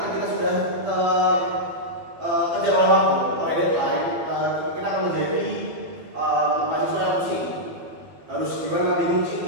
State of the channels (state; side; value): late; left; 12 ms